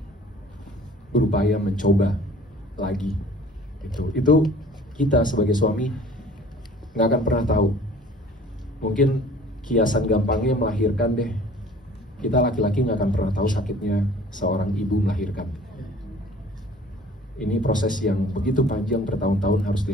berupaya mencoba lagi. Itu kita sebagai suami nggak akan pernah tahu. Mungkin kiasan gampangnya melahirkan deh. Kita laki-laki nggak akan pernah tahu sakitnya seorang ibu melahirkan. Ini proses yang begitu panjang, bertahun-tahun harus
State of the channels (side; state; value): both; normal; correlation 0.49